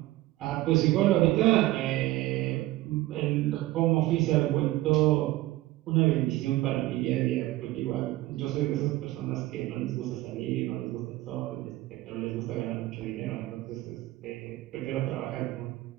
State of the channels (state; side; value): quieter; left; 17.2 dB